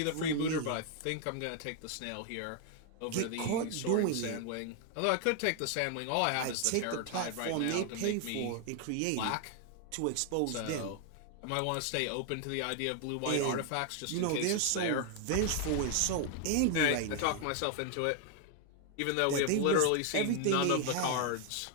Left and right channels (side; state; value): both; different; correlation 0.00